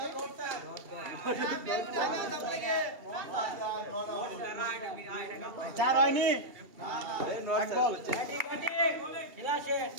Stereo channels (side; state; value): left; late; 2.7 ms